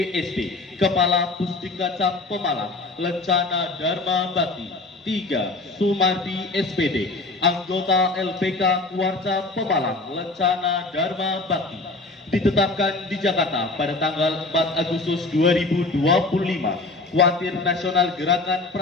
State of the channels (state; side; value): quieter; right; 3.3 dB